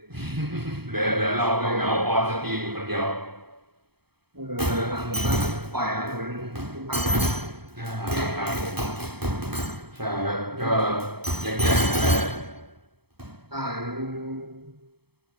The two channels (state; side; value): late; left; 0.97 ms